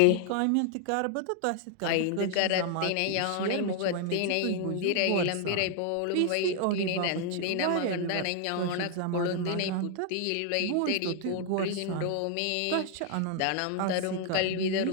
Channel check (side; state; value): both; different; correlation 0.00